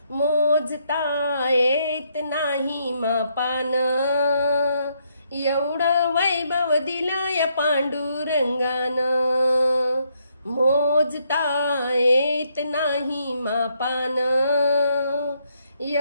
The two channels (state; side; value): inverted; both; correlation -0.74